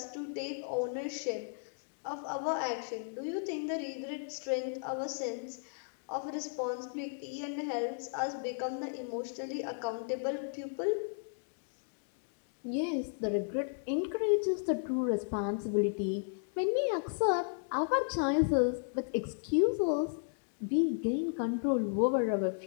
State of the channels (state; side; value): silent; right; digital silence